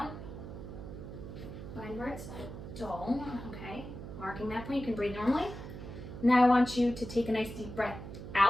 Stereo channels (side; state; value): right; noise; hum, 10 dB below the sound